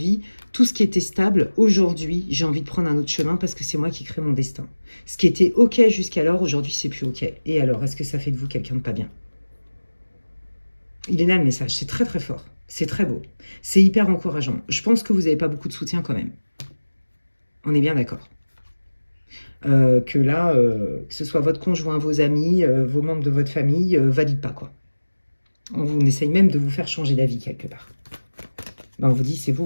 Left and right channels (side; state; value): both; inverted; correlation -1.00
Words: Tout ce qui était stable, aujourd'hui, j'ai envie de prendre un autre chemin parce que c'est moi qui crée mon destin. Ce qui était OK jusqu'alors, aujourd'hui, c'est plus OK. Et alors, est-ce que ça fait de vous quelqu'un de pas bien? Il est là le message, c'est très très fort. C'est très beau. C'est hyper encourageant. Je pense que vous n'avez pas beaucoup de soutien quand même. On est bien d'accord. Que là, que ce soit votre conjoint, vos amis, vos membres de votre famille, valide pas quoi. On essaye même de vous faire changer d'avis quelque part. Ben, on vous dit, c'est